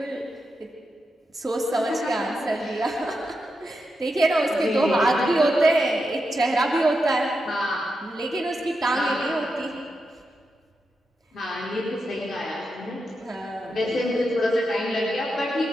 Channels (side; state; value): both; normal; correlation 0.87